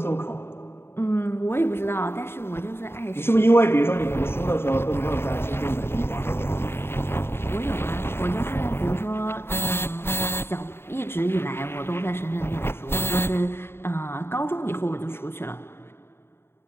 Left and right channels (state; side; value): late; right; 0.11 ms